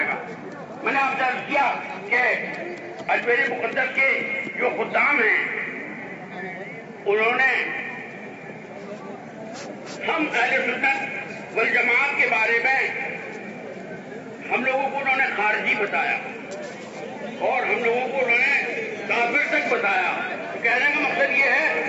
گا۔ میں نے آپ سے عرض کیا کہ اجمیر مقدس کے جو خدام ہیں انہوں نے ہم اہل سنت والجماعت کے بارے میں ہم لوگوں کو انہوں نے خارجی بتایا اور ہم لوگوں کو انہوں نے کافر تک بتایا۔ کہنے کا مقصد یہ ہے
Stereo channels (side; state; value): both; identical; correlation 1.00